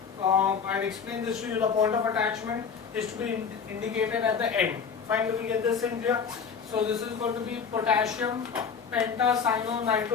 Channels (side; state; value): right; quieter; 6.3 dB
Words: I'll explain this to you. The point of attachment is to be indicated at the end. Finally, we get this in here. So this is going to be potassium